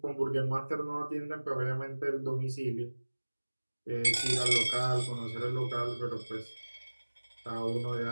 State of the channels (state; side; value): inverted; both; correlation -1.00